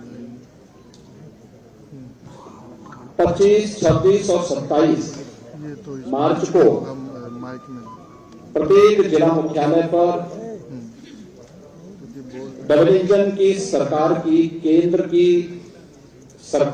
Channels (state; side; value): identical; both; correlation 1.00